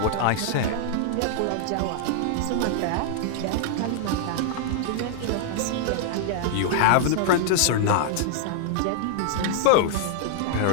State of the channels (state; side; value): different; both; correlation -0.01